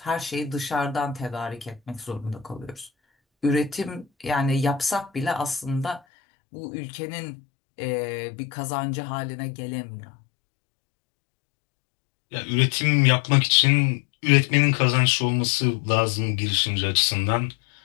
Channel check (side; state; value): right; drops out; at 6.0 s